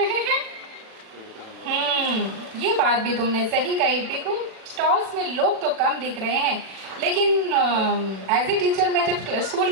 हैं। ये बात भी तुमने सही कही पीकू, स्टॉल्स में लोग तो कम दिख रहे हैं, लेकिन एज ए टीचर मैं जब स्कूल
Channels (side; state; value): left; late; 37 ms